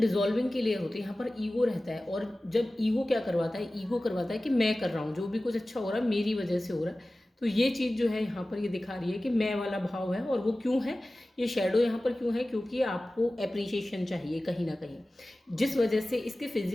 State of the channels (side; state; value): both; normal; correlation 0.97